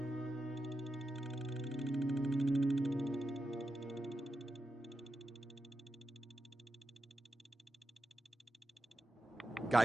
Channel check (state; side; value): normal; both; correlation 0.89